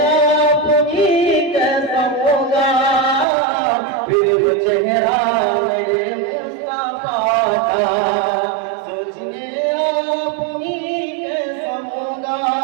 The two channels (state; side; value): drops out; left; at 3.2 s